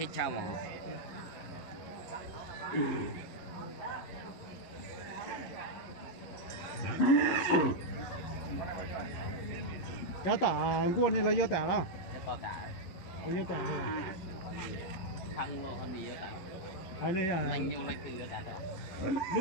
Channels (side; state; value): right; late; 11 ms